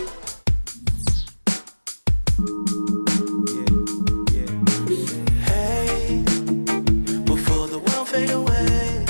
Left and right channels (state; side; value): inverted; both; correlation -1.00